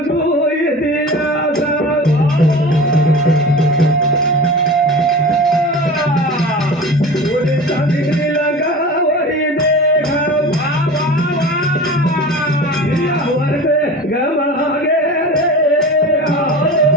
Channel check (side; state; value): both; normal; correlation 0.34